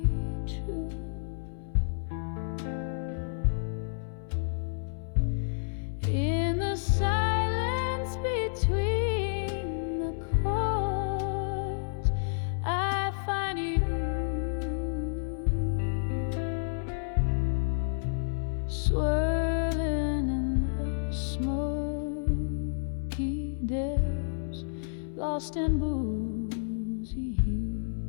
truth. In the silence between the chords, I find you swirling in the smoky depths, lost in boozy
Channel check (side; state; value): right; silent; 58 dB below the other